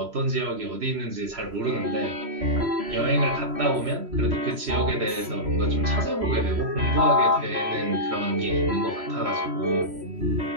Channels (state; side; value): late; left; 3.0 ms